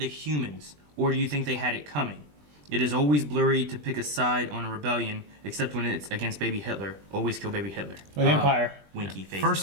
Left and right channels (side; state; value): left; late; 20 ms